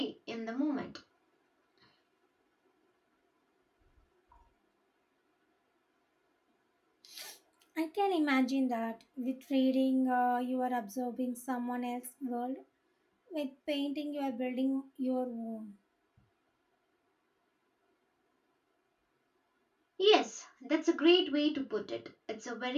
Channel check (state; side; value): identical; both; correlation 1.00